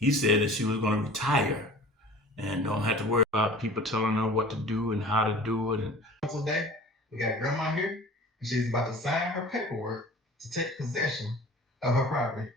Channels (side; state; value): both; normal; correlation 0.43